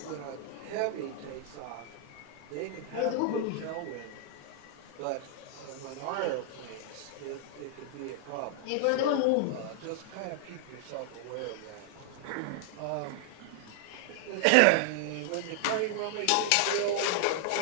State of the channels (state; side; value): different; both; correlation 0.00